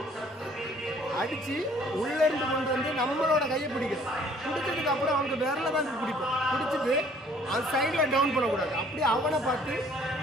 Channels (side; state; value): both; normal; correlation 0.58